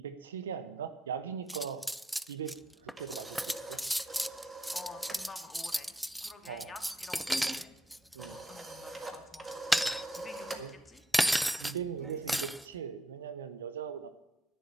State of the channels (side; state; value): both; normal; correlation 0.77